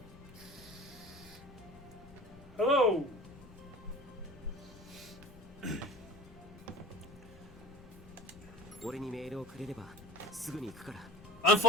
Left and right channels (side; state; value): left; noise; rumble, 20 dB below the sound